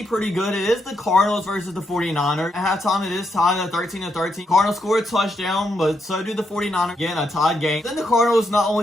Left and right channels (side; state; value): both; normal; correlation 0.80